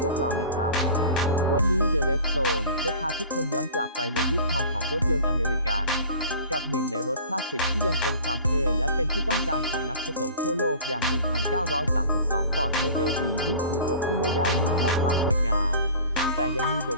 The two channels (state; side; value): inverted; both; correlation -0.42